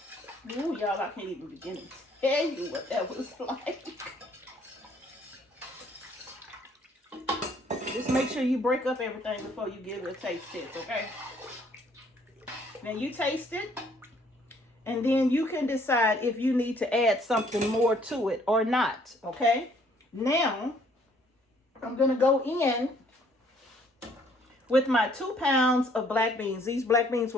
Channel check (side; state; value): both; normal; correlation 0.63